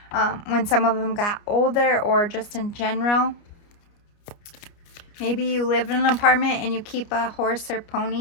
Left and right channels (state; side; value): late; right; 29 ms